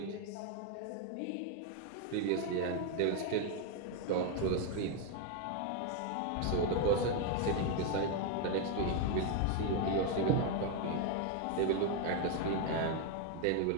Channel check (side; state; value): both; different; correlation 0.01